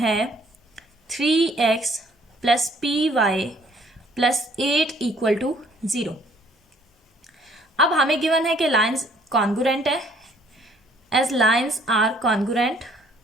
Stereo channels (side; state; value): both; normal; correlation 0.61